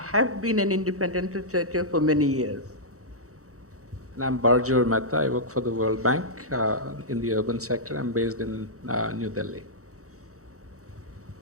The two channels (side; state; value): left; late; 0.65 ms